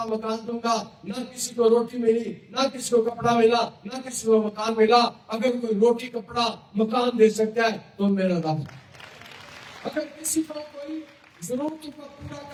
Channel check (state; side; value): identical; both; correlation 1.00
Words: مکان دوں گا. نہ کسی کو روٹی ملی، نہ کسی کو کپڑا ملا، نہ کسی کو مکان ملا. اگر کوئی روٹی کپڑا مکان دے سکتا ہے تو میرا رب. اگر کسی کو کوئی ضرورتوں کو پورا